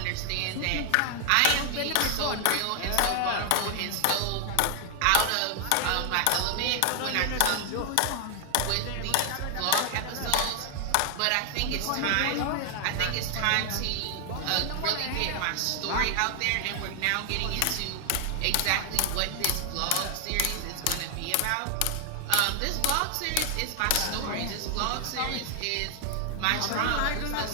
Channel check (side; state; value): both; different; correlation 0.00